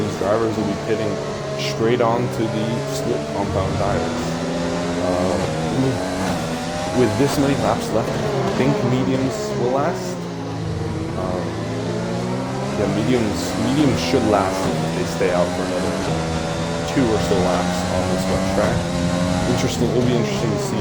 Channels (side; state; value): both; identical; correlation 1.00